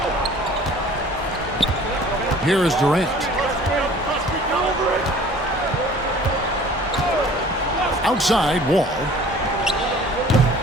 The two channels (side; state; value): both; normal; correlation 0.49